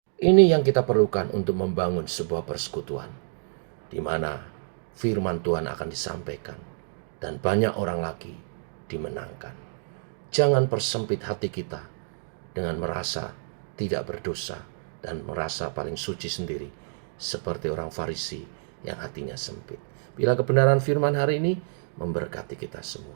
Ini yang kita perlukan untuk membangun sebuah persekutuan, di mana firman Tuhan akan disampaikan dan banyak orang lagi dimenangkan. Jangan persempit hati kita dengan merasa tidak berdosa dan merasa paling suci sendiri, seperti orang Farisi yang hatinya sempit. Bila kebenaran firman hari ini memberkati kita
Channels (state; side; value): silent; left; digital silence